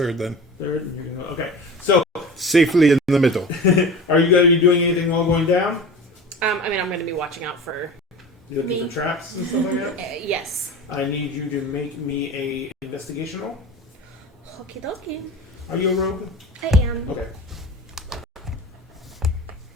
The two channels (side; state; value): both; normal; correlation 0.34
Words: then. third, and you're going to go. Okay. So, Safely in the middle. are you going to be doing anything while going down? I mean, I'm going to be watching out for. You looking Me. for traps and stuff like that? Yes. I need you to make me a investigation roll. Okie dokie. Are you a rogue? I am. Okay.